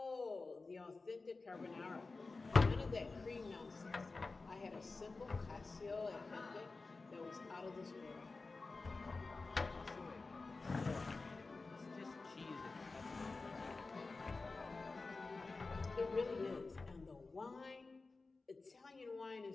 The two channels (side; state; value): right; quieter; 3.8 dB